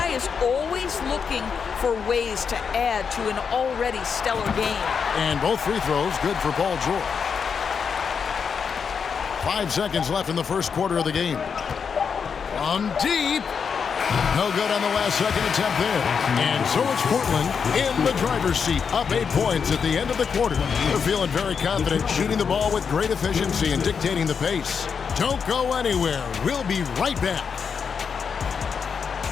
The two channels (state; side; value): quieter; right; 6.3 dB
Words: is always looking for ways to add to an already stellar game. And both free throws good for Paul George. 5 seconds left in the first quarter of the game. From deep. No good on the last second attempt there. And so it's Portland in the driver's seat, up 8 points at the end of the quarter. They're feeling very confident, shooting the ball with great efficiency and dictating the pace. Don't go anywhere. We'll be right back.